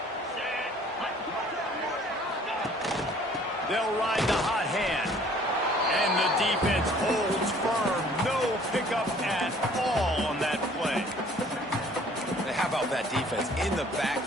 They'll ride the hot hand. And the defense holds firm. No pickup at all on that play. How about that defense in the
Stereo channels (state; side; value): normal; both; correlation 0.55